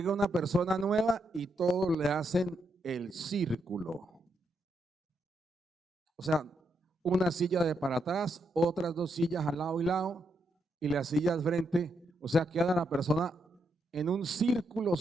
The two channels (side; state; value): both; normal; correlation 0.80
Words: una persona nueva y todos le hacen el círculo. O sea, una silla de para atrás, otras 2 sillas al lado y lado, y las sillas frente. O sea, queda la persona en un círculo